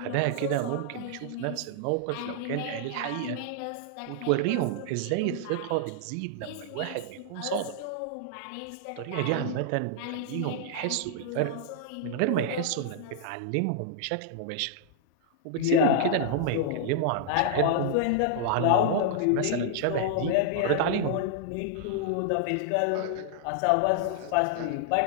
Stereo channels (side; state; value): both; different; correlation -0.01